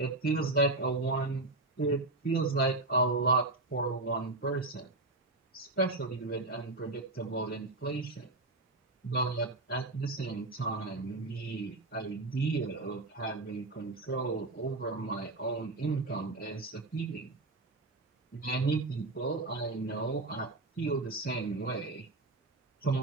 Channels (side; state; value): left; quieter; 3.0 dB